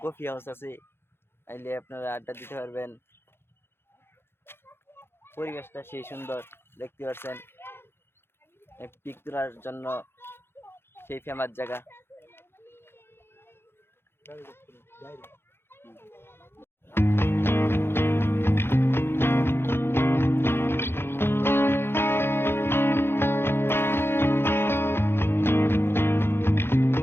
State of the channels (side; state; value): right; late; 0.11 ms